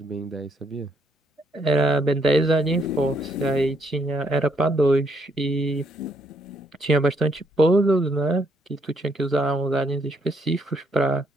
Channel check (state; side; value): normal; both; correlation 0.72